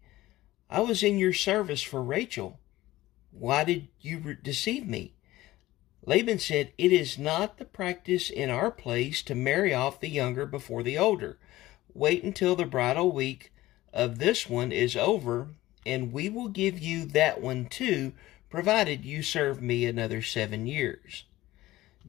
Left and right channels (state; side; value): quieter; right; 16.9 dB